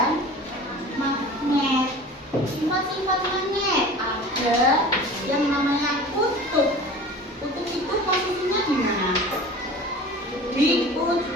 magnet. Sifat-sifat magnet ada yang namanya kutub. Kutub itu posisinya di mana? Di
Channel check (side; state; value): both; normal; correlation 0.39